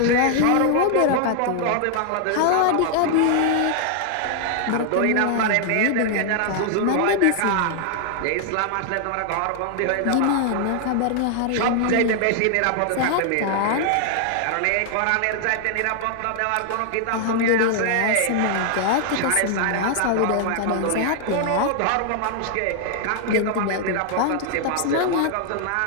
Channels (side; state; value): both; different; correlation 0.00